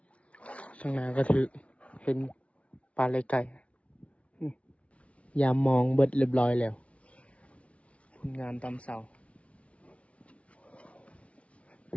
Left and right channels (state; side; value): late; right; 0.063 ms